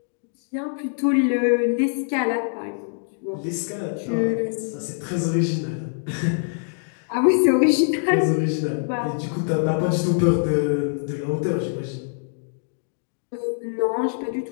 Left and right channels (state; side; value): silent; right; digital silence